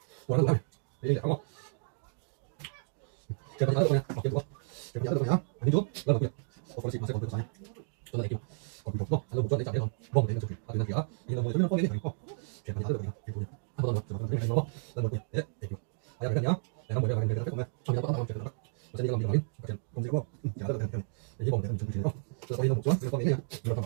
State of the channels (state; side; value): silent; left; digital silence